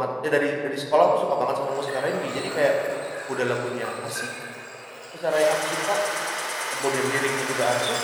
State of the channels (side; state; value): both; identical; correlation 1.00